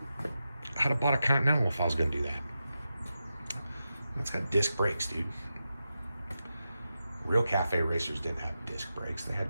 I'd have bought a Continental if I was going to do that. It's got disc brakes, dude. Real cafe racers didn't have disc brakes, they had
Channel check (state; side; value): inverted; both; correlation -0.90